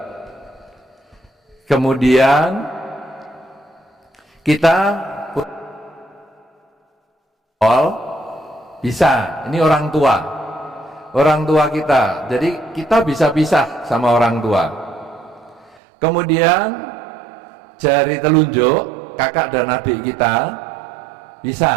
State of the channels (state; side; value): drops out; left; at 15.8 s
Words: kemudian kita bisa, ini orang tua kita, jadi kita bisa pisah sama orang tua. Kemudian jari telunjuk kakak dan adik kita